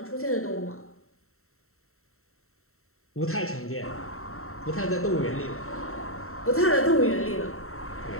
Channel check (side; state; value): right; late; 0.63 ms